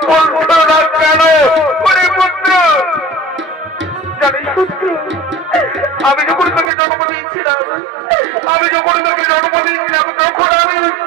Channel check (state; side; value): drops out; left; at 6.7 s